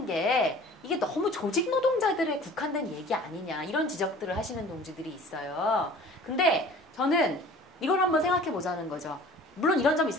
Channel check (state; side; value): normal; both; correlation 0.46